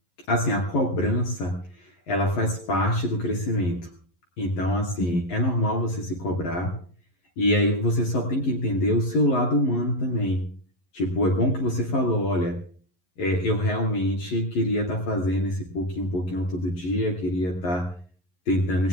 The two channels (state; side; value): late; right; 11 ms